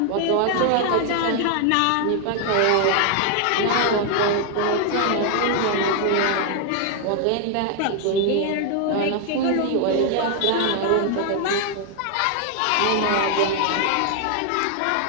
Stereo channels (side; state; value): both; different; correlation 0.00